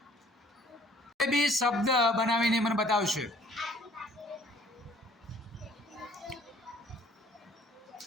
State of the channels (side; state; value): both; normal; correlation 0.56